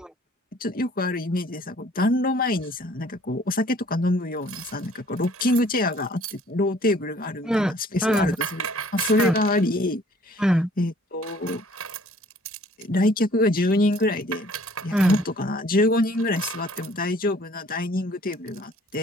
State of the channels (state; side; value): normal; both; correlation 0.56